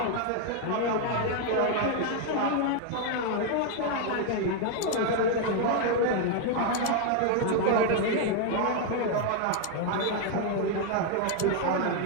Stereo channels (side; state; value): both; different; correlation 0.01